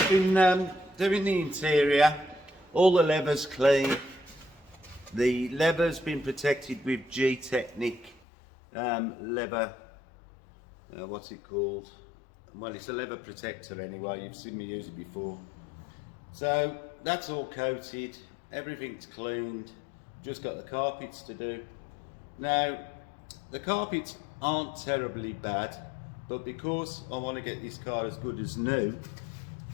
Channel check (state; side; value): drops out; right; at 8.2 s